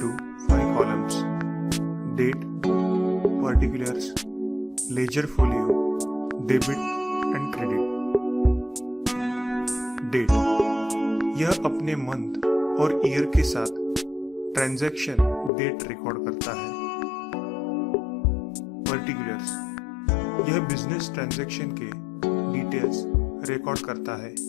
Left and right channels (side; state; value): right; drops out; at 15.5 s